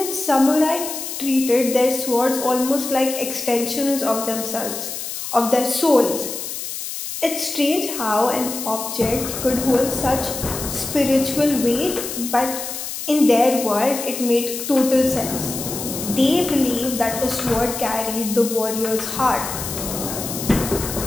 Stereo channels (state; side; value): noise; left; hiss, 6 dB below the sound